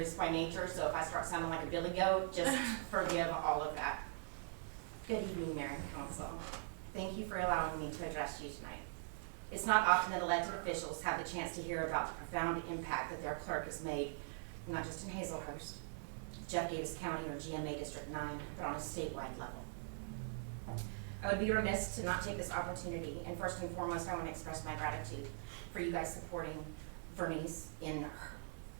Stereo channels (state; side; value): silent; left; digital silence